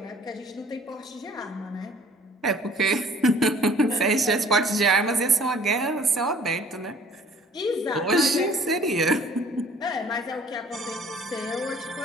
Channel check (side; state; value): both; normal; correlation 0.53